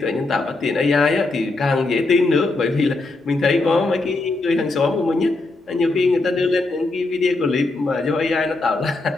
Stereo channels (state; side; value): quieter; right; 3.2 dB